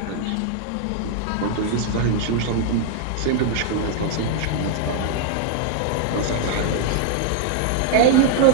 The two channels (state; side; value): different; both; correlation 0.00